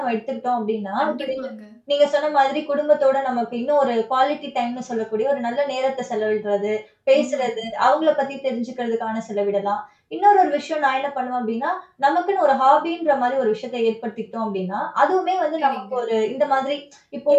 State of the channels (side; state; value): both; identical; correlation 1.00